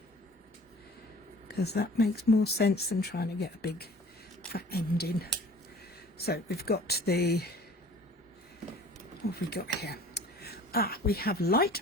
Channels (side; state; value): both; normal; correlation 0.47